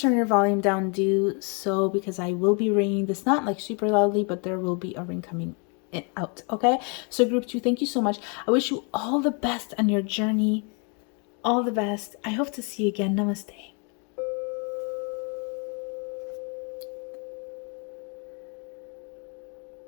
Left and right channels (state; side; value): quieter; right; 35.6 dB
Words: your volume down, do so, because I will be ringing this, not like super loudly, but there will be a ring coming out. Okay, so group 2, thank you so much. I wish you all the best on your journey. All the best. I hope to see you again. Namaste.